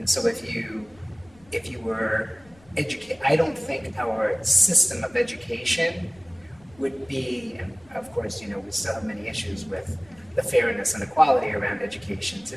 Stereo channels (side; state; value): left; noise; rumble, 28 dB below the sound